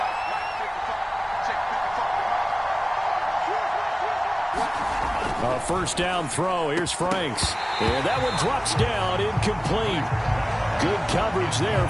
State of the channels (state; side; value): identical; both; correlation 1.00